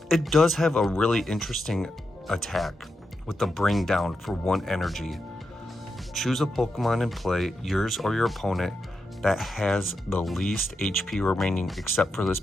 it does have a really interesting attack with the Bring Down for 1 energy. Choose a Pokemon in play, yours or your opponent, that has the least HP remaining except for this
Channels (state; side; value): normal; both; correlation 0.86